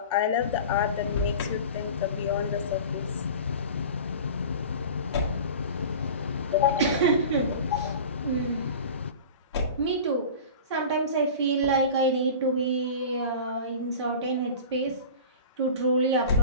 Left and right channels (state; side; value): inverted; both; correlation -0.36